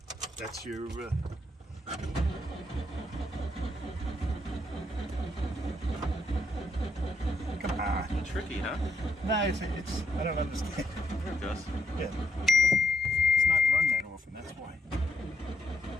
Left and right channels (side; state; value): both; normal; correlation 0.76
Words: That's your. Come on. Tricky, huh? Nah, it's. I don't understand. There it goes. Yeah. It's not run that often. That's why.